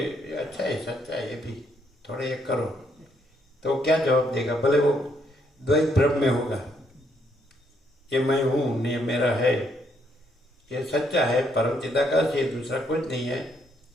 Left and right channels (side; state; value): both; normal; correlation 0.73